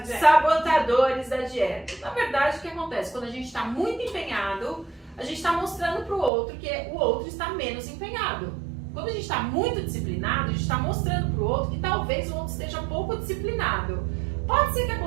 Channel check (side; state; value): left; drops out; at 6.3 s